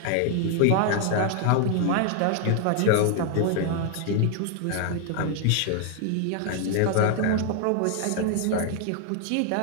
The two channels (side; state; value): both; different; correlation 0.00